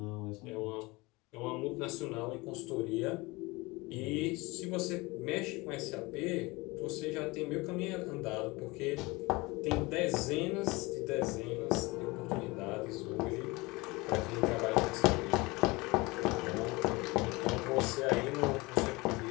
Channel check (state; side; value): quieter; right; 23.6 dB